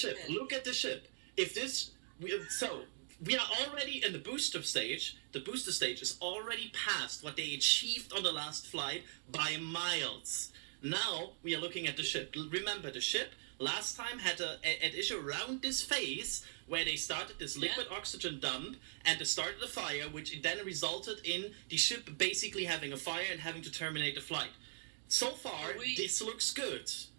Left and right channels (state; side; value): silent; left; digital silence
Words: Look at the ship. If this, we are already in the booster stage. The booster stage is already past what they achieved on the last flight by miles. Now we are looking at the ship. Remember, the ship last time had an issue around this phase where they started this liquid oxygen dump and they started a fire, which then resulted in the ship basically having a fire and having to terminate the flight. So far, this looks good.